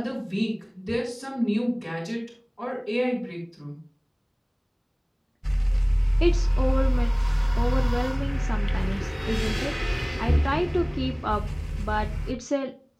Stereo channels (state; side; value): identical; both; correlation 1.00